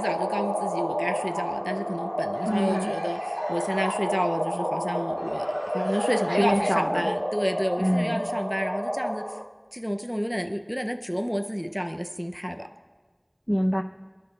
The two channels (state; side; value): identical; both; correlation 1.00